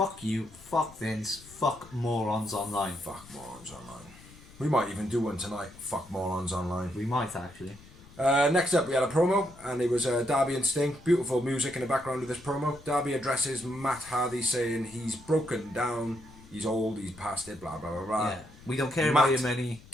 you, fuck Vince, fuck morons online. Fuck morons online. We might even do one tonight. Fuck morons online. We might actually. Next up, we had a promo, and it was Darby and Sting. Beautiful music in the background of this promo. Darby addresses Matt Hardy, saying he's broken down, he's old, he's past it, blah blah blah blah. Yeah, we don't care Matt about your money.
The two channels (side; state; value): left; noise; rumble, 21 dB below the sound